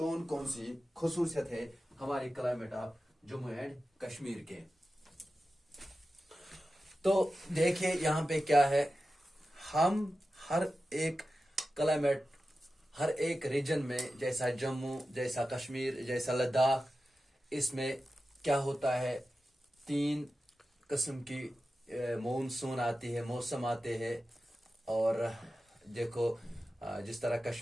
कौन सी खसूसियत है हमारे climate of Jammu and Kashmir के। तो देखिए यहाँ पे क्या है, हम हर एक क्लाइमेट हर एक रीजन में, जैसा जम्मू, जैसा कश्मीर, जैसा लद्दाख, इसमें क्या होता है, 3 किस्म की मॉनसून आती है, मौसम आते हैं। और देखो जिस तरह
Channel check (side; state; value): both; normal; correlation 0.93